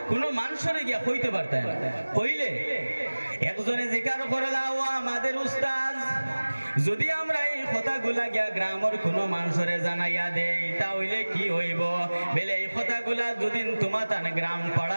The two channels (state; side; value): inverted; both; correlation -1.00